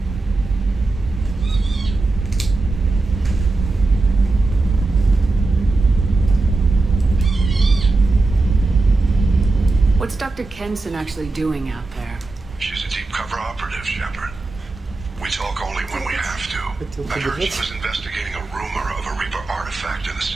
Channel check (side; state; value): left; quieter; 3.3 dB